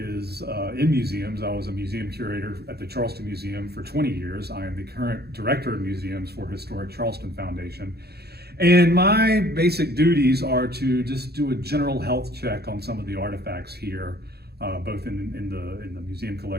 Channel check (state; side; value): late; left; 0.47 ms